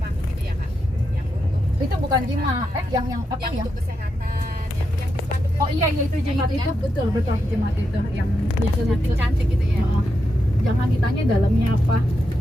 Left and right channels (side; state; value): both; normal; correlation 0.85